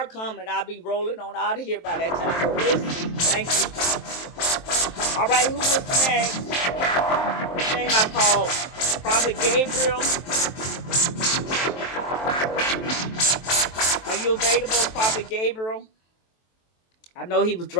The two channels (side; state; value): right; late; 23 ms